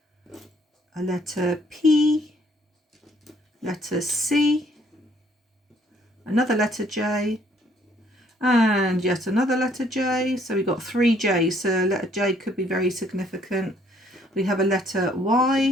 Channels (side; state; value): both; normal; correlation 0.65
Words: A letter P, letter C, another letter J, and yet another letter J. So we've got 3 J's, so letter J could be very significant. We have a letter